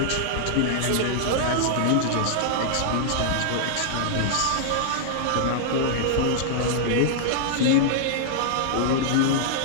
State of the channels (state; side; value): different; both; correlation -0.01